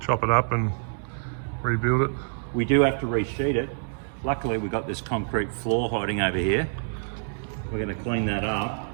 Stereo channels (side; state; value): left; silent; digital silence